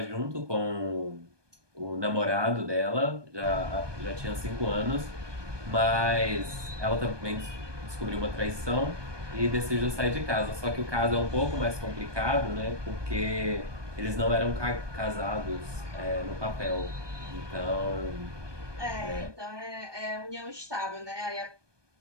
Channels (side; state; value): left; late; 1.2 ms